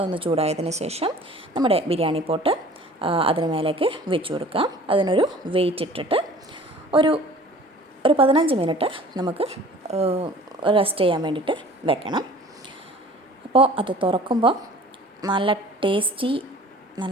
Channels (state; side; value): normal; both; correlation 0.47